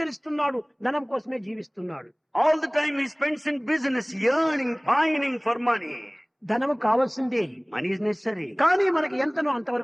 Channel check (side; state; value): both; identical; correlation 1.00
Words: ధనం కోసమే జీవిస్తున్నాడు. All the time he spends in business, yearning, pining for money. ధనము కావాల్సిందే, Money is necessary, కానీ మనకి ఎంతనో